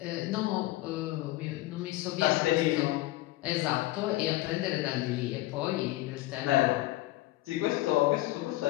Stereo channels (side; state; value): right; quieter; 17.8 dB